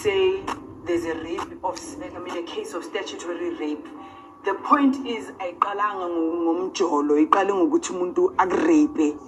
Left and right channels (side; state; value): both; identical; correlation 1.00